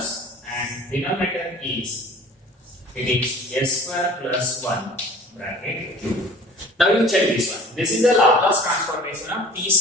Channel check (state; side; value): normal; both; correlation 0.46